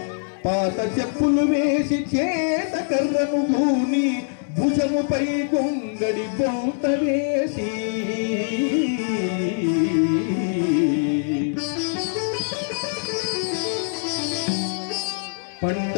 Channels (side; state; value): right; silent; 63 dB below the other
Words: బూని భుజముపై గొంగడి బౌత వేసి పంట